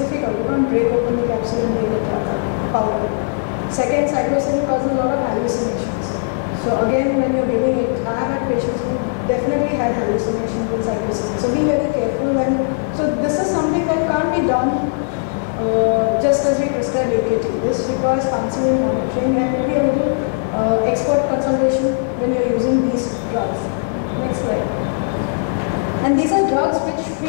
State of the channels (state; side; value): silent; right; 57 dB below the other